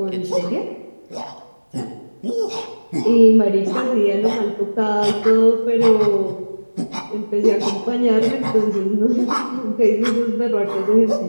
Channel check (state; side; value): inverted; both; correlation -1.00